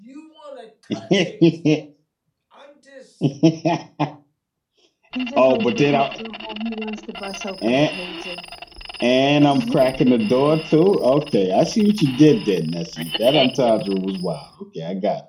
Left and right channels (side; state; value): both; identical; correlation 1.00